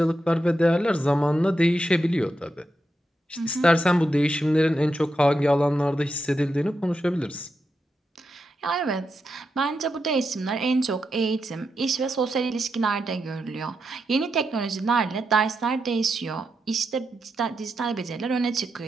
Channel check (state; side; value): normal; both; correlation 0.86